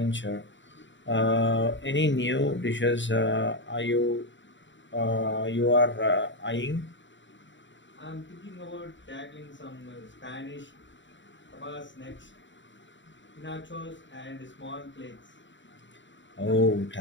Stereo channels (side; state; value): right; late; 0.54 ms